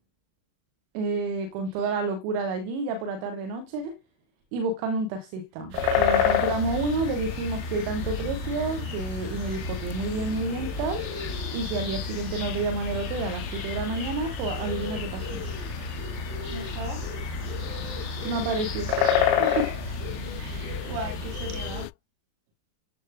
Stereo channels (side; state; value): left; late; 37 ms